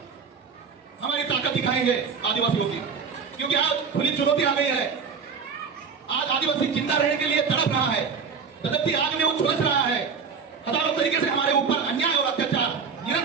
हमारी ताकत दिखाएंगे आदिवासियों की। क्योंकि आज खुली चुनौती आ गई है। आज आदिवासी जिंदा रहने के लिए तड़प रहा है, तड़पती आग में वो झुलस रहा है। हजारों तरीके से हमारे ऊपर अन्याय और अत्याचार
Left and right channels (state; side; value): quieter; left; 5.8 dB